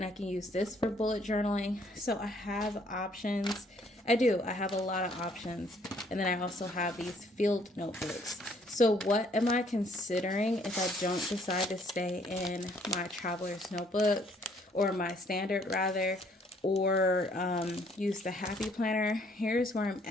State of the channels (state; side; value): normal; both; correlation 0.64